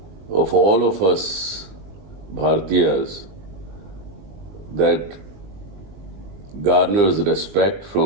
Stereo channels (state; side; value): late; left; 21 ms